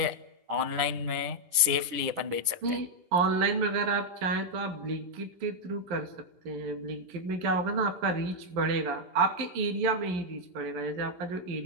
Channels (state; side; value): late; left; 10 ms